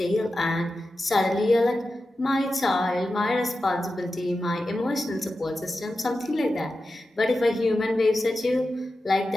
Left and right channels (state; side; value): normal; both; correlation 0.92